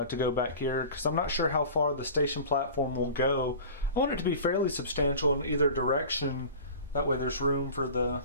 go back here, because I'm not sure how far the station platform will go. I want it to be fairly substantial in either direction, That way there's room for the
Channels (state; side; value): inverted; both; correlation -0.38